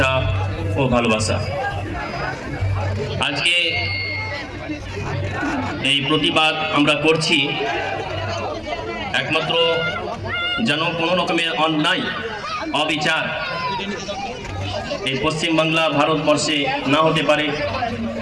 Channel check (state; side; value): identical; both; correlation 1.00